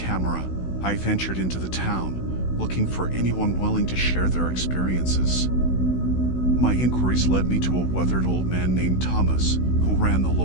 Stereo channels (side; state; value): right; late; 16 ms